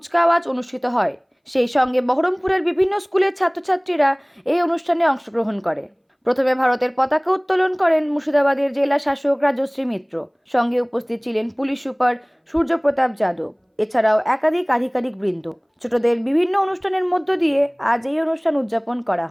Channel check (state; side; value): identical; both; correlation 1.00